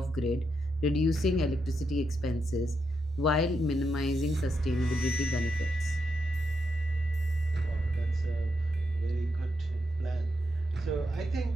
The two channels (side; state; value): both; normal; correlation 0.82